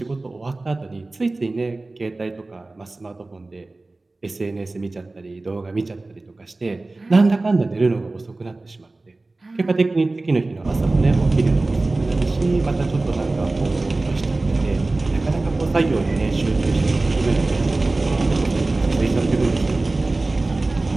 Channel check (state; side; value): quieter; left; 3.1 dB